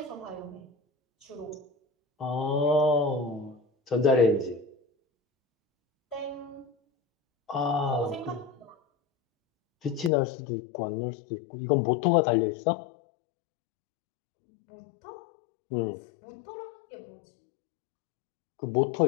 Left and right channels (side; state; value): right; drops out; at 10.1 s